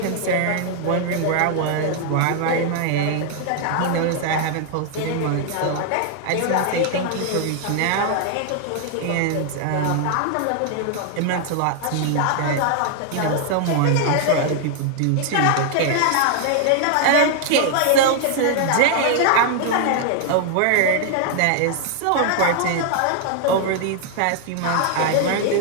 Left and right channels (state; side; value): different; both; correlation 0.00